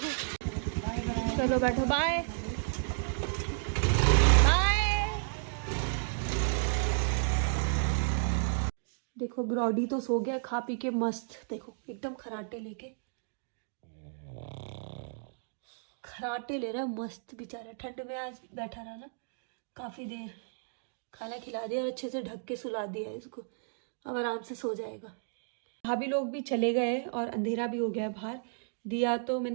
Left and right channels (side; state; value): left; silent; digital silence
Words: चलो बैठो, बाय बाय। देखो ब्रॉडी तो सो गया खा पी के मस्त, देखो एकदम खराटे लेके, खराटे ले रहा है मस्त बेचारा। ठंड में आज बैठा रहा ना काफी देर, खाना खिला दिया और अच्छे से ढक के सुला दिया इसको, अब आराम से सो जाएगा। भाभी लोग भी चले गए और अंधेरा भी हो गया बाहर। दिया तो